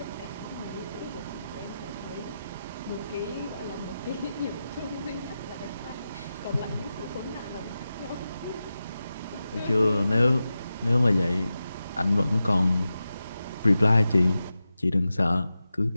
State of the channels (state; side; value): inverted; both; correlation -0.92